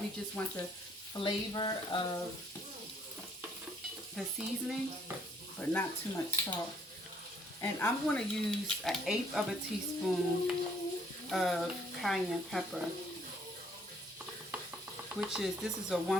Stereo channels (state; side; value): normal; both; correlation 0.64